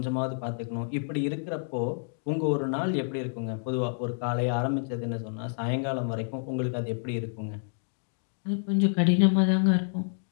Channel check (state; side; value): silent; right; digital silence